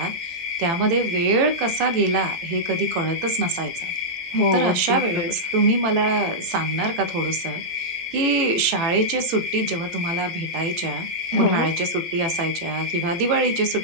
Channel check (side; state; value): left; late; 18 ms